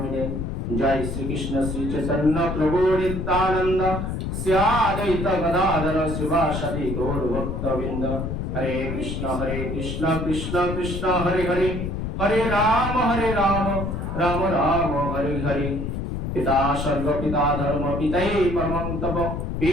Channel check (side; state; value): left; noise; rumble, 3 dB below the sound